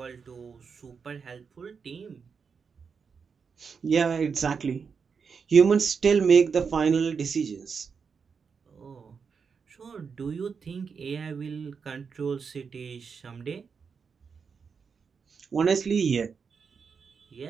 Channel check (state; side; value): quieter; left; 5.8 dB